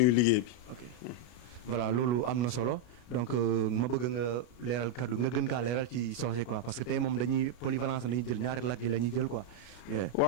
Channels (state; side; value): late; right; 33 ms